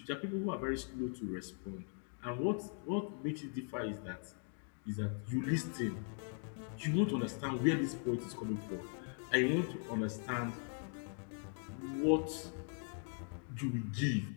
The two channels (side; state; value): right; silent; 51 dB below the other